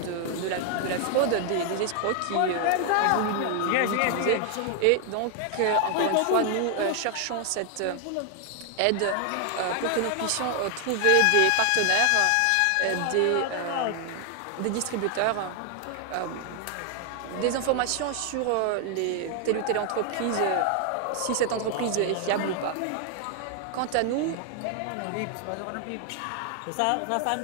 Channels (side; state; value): both; different; correlation 0.00